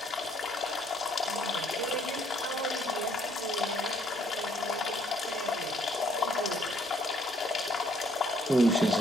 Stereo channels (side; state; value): both; normal; correlation 0.66